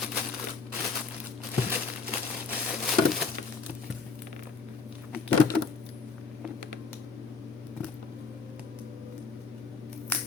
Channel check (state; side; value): quieter; right; 4.7 dB